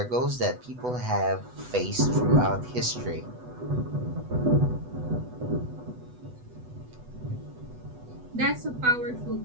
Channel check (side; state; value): left; late; 8.1 ms